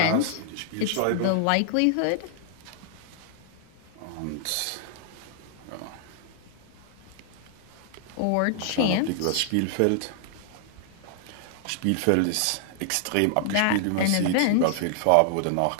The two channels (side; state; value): both; different; correlation 0.00